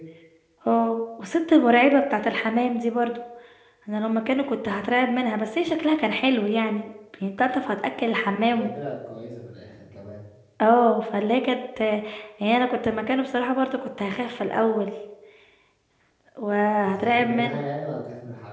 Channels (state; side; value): identical; both; correlation 1.00